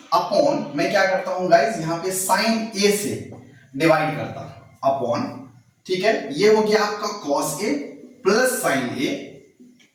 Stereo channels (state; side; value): identical; both; correlation 1.00